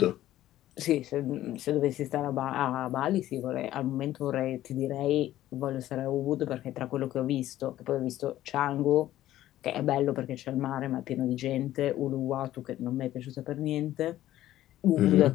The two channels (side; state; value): right; quieter; 13.8 dB